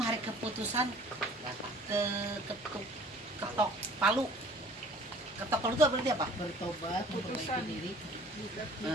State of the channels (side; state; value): both; normal; correlation 0.51